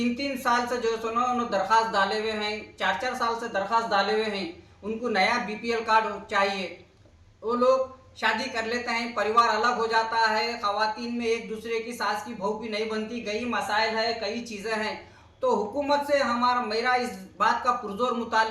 साल से जो है ना उन्होंने दरख्वास्त डाले हुए हैं। 4 साल से दरख्वास्त डाले हुए हैं। उनको नया बीपीएल कार्ड चाहिए। वो लोग शादी कर लेते हैं, परिवार अलग हो जाता है, खवातीन में एक दूसरे की सास की बहू भी नहीं बनती, कई मसाइल है, कई चीज़ें हैं। तो हुकूमत से मेरा इस बात का पुरजोर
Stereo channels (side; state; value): both; identical; correlation 1.00